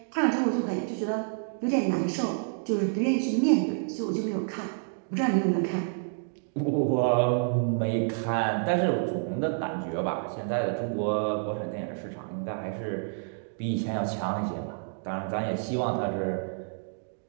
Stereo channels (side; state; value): left; silent; digital silence